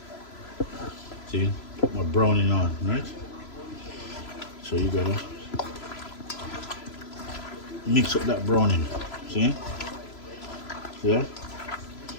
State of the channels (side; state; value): right; late; 3.0 ms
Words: See? Put my browning on, right? So you gotta mix up that browning. See? See that?